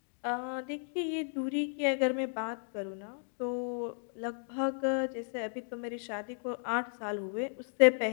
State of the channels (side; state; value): right; silent; digital silence